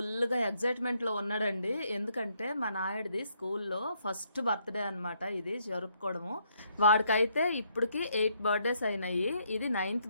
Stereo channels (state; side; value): inverted; both; correlation -0.72